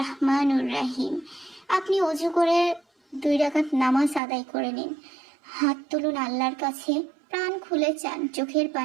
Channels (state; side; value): drops out; left; at 4.2 s